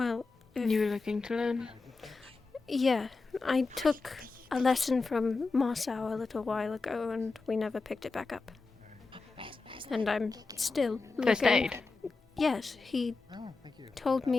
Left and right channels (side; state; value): right; quieter; 3.9 dB